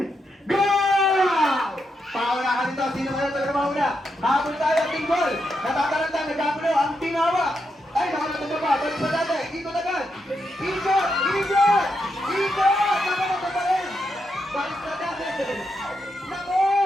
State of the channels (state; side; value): normal; both; correlation 0.83